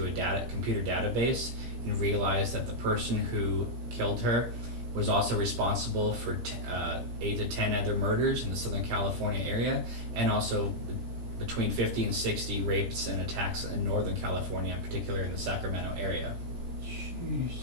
a computer database and realized that the person who killed her was also responsible for 8 to 10 other murders in the Southern California area, and also between 50 and 60 rapes and attacks in Northern California, in particular in the Sacramento area. Jeez.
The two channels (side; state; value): left; late; 17 ms